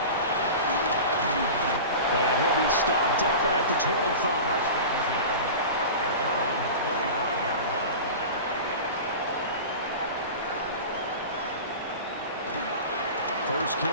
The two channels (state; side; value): inverted; both; correlation -0.32